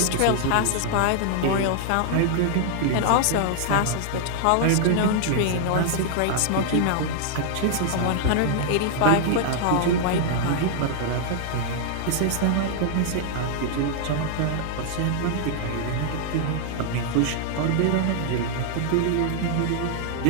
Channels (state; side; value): different; both; correlation -0.01